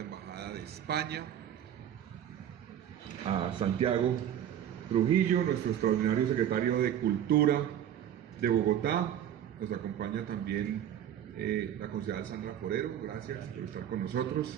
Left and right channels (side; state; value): left; quieter; 10.3 dB